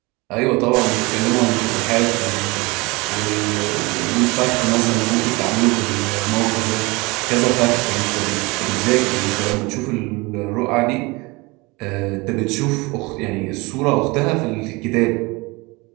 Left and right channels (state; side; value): quieter; left; 24.8 dB